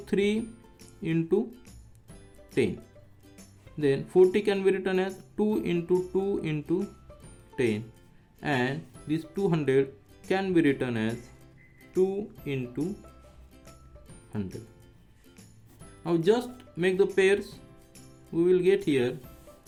into 10, then 40 can be written as 2 into 2 into 10, and this 200 can be written as 2 into 100. Now just make the pairs. We will get here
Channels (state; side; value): identical; both; correlation 1.00